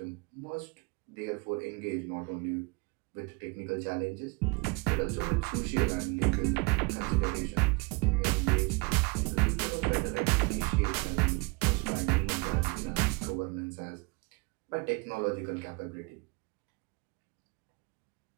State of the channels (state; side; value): quieter; left; 27.2 dB